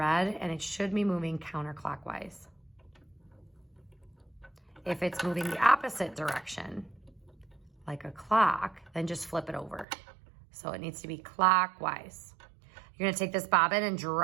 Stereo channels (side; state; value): left; drops out; at 9.9 s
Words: and it should be moving counterclockwise. If it's moving the opposite direction, like a clock, then just flip it over. So it needs to be clockwise. You're gonna take this bobbin and